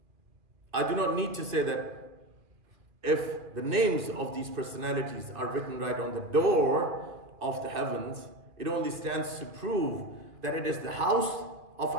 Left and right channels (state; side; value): late; left; 2.4 ms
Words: I do not need to say that if the names of these personalities are written right on the door of the heavens, it only stands to prove that it is the house of